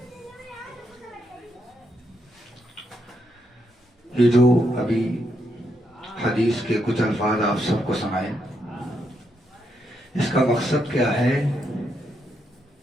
یہ جو ابھی حدیث کے کچھ الفاظ آپ سب کو سنائے، اس کا مقصد کیا ہے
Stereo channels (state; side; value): normal; both; correlation 0.79